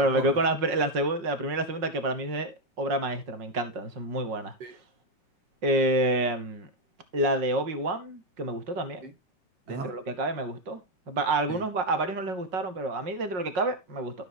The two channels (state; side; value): late; left; 5.5 ms